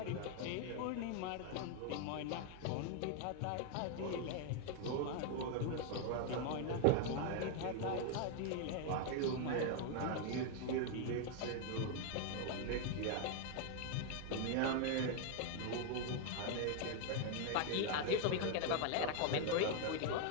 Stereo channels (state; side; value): different; both; correlation 0.00